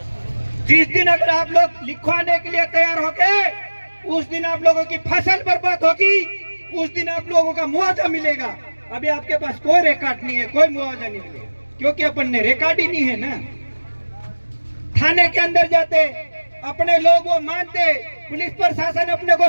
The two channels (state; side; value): inverted; both; correlation -1.00